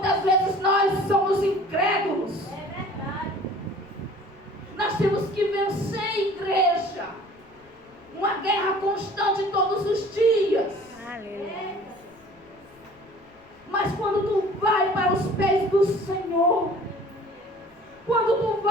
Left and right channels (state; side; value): noise; left; rumble, 30 dB below the sound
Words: vezes nós somos incrédulos. Nós temos que vencer, igreja. Uma guerra constante todos os dias. Aleluia. Mas quando tu vai para os pés do Senhor, quando tu